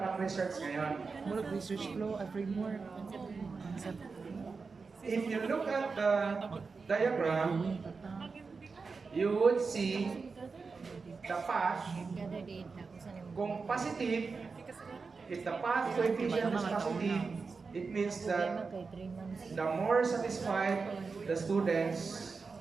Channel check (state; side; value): quieter; left; 4.6 dB